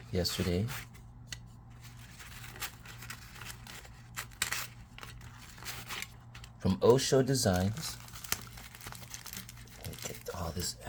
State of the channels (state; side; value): identical; both; correlation 1.00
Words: yesterday. From O.Shodesigns. Let me get all this